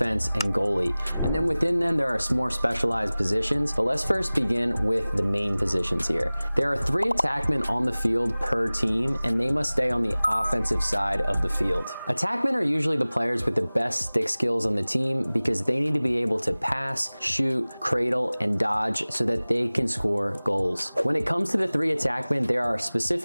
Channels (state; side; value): inverted; both; correlation -0.99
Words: and goalie. And then within them, there are more specialized positions, but let's first begin with the main positions here. There are 3 attackmen on the field per team, and they must stay on the offensive side of the field. Attackmen are usually the players with the best stick skills on the team because they need to be able to pass, shoot, cradle, and dodge so that they can score goals. When it comes to the 3 attackmen, there are